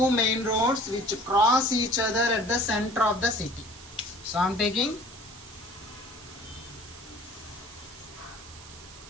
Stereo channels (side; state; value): right; noise; hiss, 18 dB below the sound